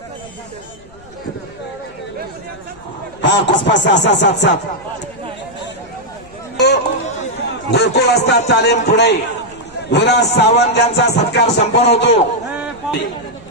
हा कुस्पा 6-6-7-7 गोकुळ असतात तालीम पुणे. विराज सावंत यांचा सत्कार संपन्न होतो.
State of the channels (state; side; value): noise; left; rumble, 24 dB below the sound